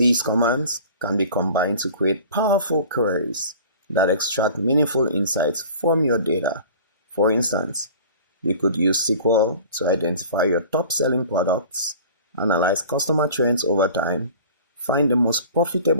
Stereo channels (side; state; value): both; inverted; correlation -0.43